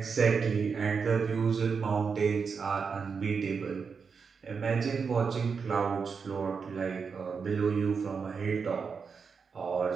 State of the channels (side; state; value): left; quieter; 5.6 dB